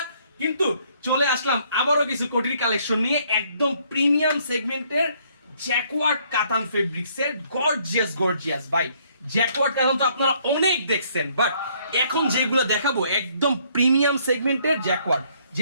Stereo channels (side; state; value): both; inverted; correlation -0.65